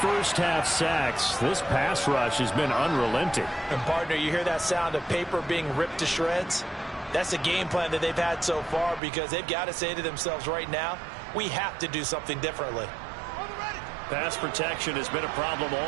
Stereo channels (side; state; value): left; drops out; at 9.0 s